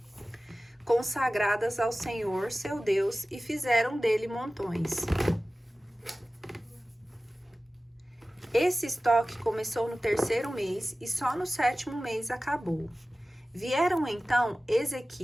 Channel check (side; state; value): both; normal; correlation 0.96